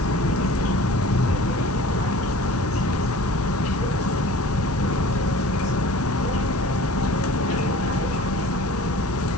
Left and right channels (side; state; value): both; normal; correlation 0.44